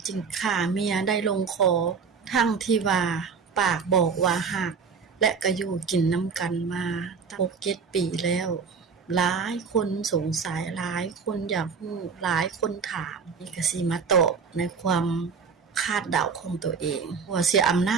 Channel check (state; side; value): quieter; left; 5.7 dB